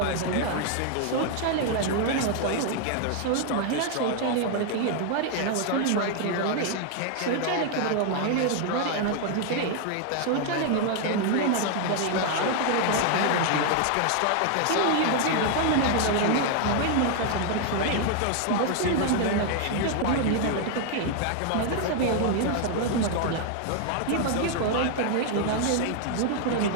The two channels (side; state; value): both; different; correlation 0.00